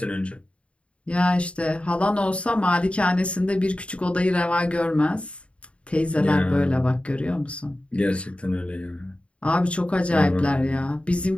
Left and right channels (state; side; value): late; right; 0.060 ms